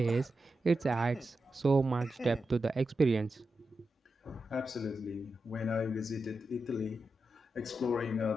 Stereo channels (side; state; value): both; normal; correlation 0.89